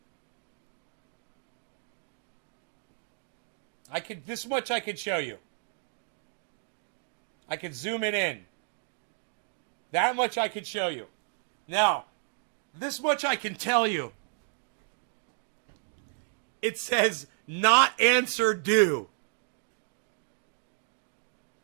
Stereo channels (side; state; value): left; silent; 57 dB below the other